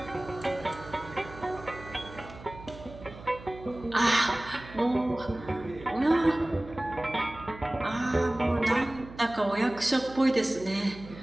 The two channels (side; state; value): right; noise; hum, 16 dB below the sound